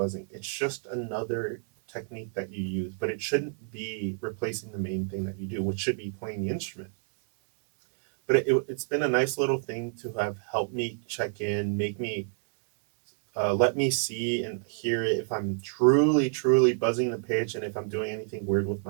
It's just another technique that you use, but it shouldn't be replacing the main thing that you do, which should be playing the instrument. But it's been a nice little thing to have helped me check in, make me let me see and hear it if I'm truly, truly buzzing the pitch and if I'm doing anything weird with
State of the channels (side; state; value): left; silent; digital silence